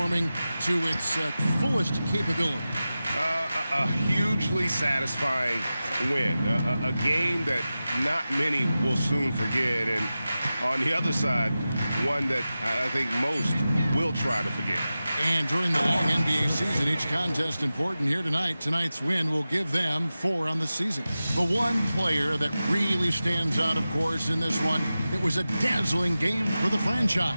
to its fullest capability. A hugely satisfying win. A game that not many will soon forget. And on the other side, one that I think most will try to forget. And during the long NBA season, each contest important. Here tonight, tonight's win will give them 4 on the season. The one player that really stands out, of course, in this one, it was a dazzling game for the franchise.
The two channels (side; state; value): both; inverted; correlation -0.95